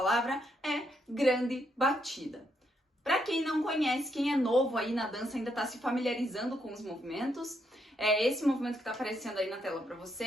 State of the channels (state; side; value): normal; both; correlation 0.76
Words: é grande batida. Para quem não conhece, quem é novo aí na dança, ainda está se familiarizando com os movimentos, esse movimento que está aparecendo aí na tela para